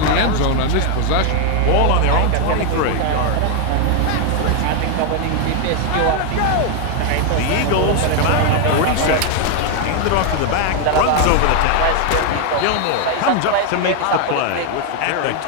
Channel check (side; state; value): both; different; correlation 0.00